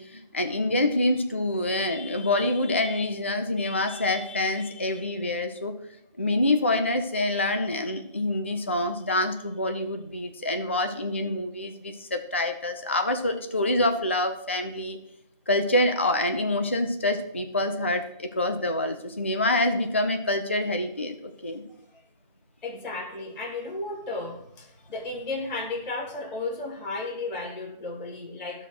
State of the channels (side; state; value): both; inverted; correlation -0.44